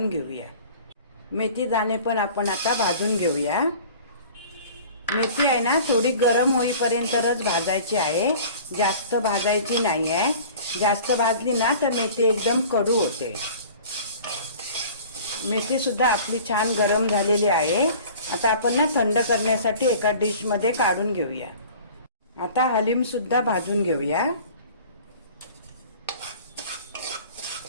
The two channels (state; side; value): inverted; both; correlation -0.44